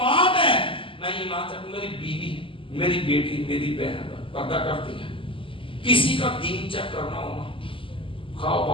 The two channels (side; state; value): right; late; 0.25 ms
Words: ہے۔ میں ایمان سے میری بیوی، میری بیٹی، میری بہن پردہ کرتی ہے، کسی کا دین چیک کرنا ہونا، خواہ